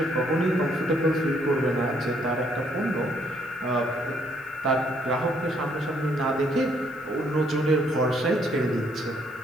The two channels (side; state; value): left; noise; hiss, 28 dB below the sound